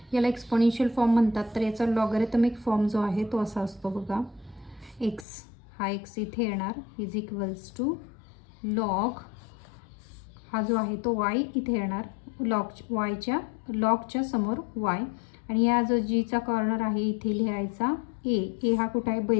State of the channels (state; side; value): drops out; right; at 5.2 s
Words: याला एक्सपोनेन्शियल फॉर्म म्हणतात. तर याचा लॉगॅरिथमिक फॉर्म जो आहे तो असा असतो बघा. एक्स हा एक्स इथे येणार इज इक्वल्स टू लॉग हा जो आहे तो वाय इथे येणार, लॉगच्या समोर वाय आणि या जो जीचा कॉर्नर आहे इथे लिहायचा ए हा कुठं आहे,